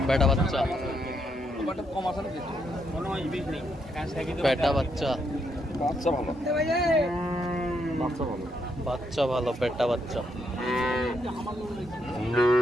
বেটা বাচ্চা, কম আছে নাকি? বেটা বাচ্চা। বাচ্চা ভালো, বাচ্চা ভালো, বাচ্চা ভালো, পেটটা বাচ্চা।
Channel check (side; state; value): both; normal; correlation 0.77